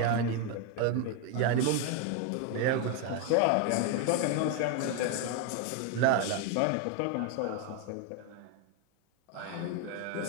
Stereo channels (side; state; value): both; different; correlation 0.01